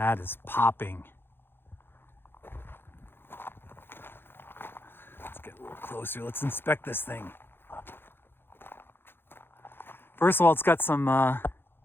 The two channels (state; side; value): late; right; 0.10 ms